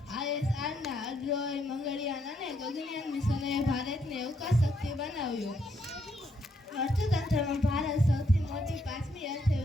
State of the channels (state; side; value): normal; both; correlation 0.75